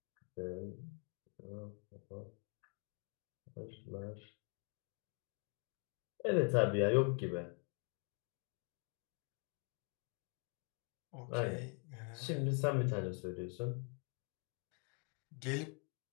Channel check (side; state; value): right; quieter; 36.0 dB